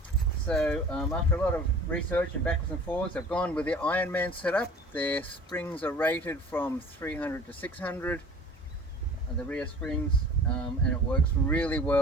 So after a lot of research and backwards and forwards, I've gone with the Ironman setup. Their springs are rated from 300 to 600, the rear springs, and it works really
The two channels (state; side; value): normal; both; correlation 0.44